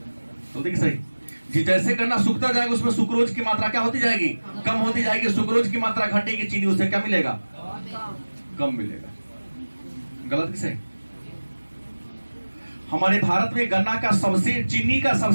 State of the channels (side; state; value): both; inverted; correlation -1.00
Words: तो देखिए सही जी, जैसे गन्ना सूखता जाएगा उसमें सुक्रोज की मात्रा क्या होती जाएगी? कम होती जाएगी। सुक्रोज की मात्रा घटेगी, चीनी उससे क्या मिलेगा? कम मिलेगा। गलत कि सही? हमारे भारत में गन्ना का चीनी का